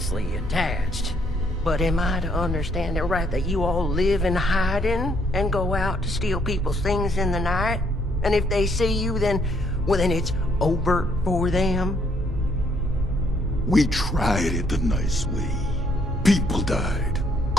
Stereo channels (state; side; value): normal; both; correlation 0.69